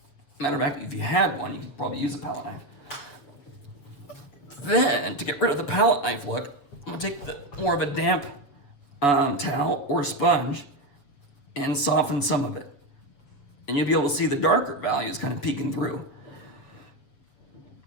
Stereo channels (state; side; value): late; right; 7.5 ms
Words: Matter of fact, if you had one, you could probably use a palette knife. Then, to get rid of the palette knife look, I'm gonna take more of a damp towel or a sponge and soften some of it. And you'll be able to see the darker values kind of peeking through.